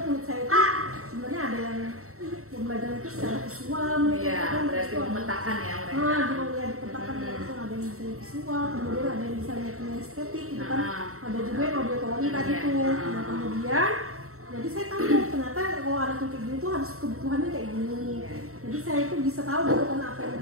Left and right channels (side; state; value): left; late; 0.63 ms